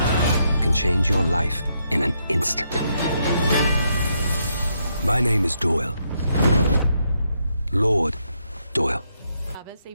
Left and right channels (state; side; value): inverted; both; correlation -0.78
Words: can change your life in an instant. My name is Doyle. Lord Doyle. Chavez,